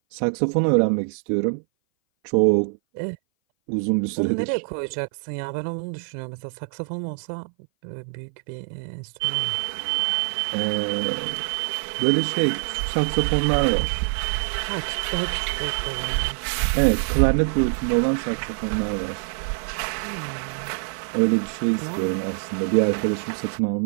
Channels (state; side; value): silent; left; 58 dB below the other